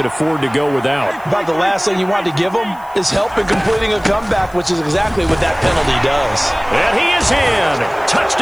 afford to go without. About the last thing you want to give them is help in completing a comeback, which is exactly what that penalty does. And he is in.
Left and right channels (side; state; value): left; noise; hiss, 27 dB below the sound